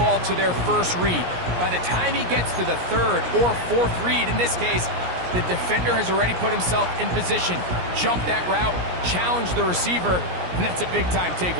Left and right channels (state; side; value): late; left; 17 ms